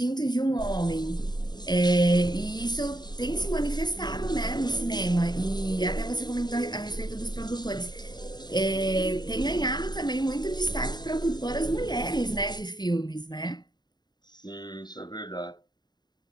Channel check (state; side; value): late; right; 0.20 ms